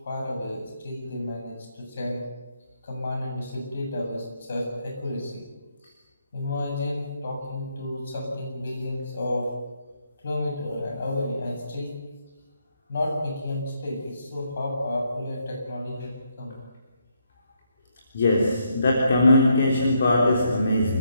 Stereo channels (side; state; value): both; inverted; correlation -0.76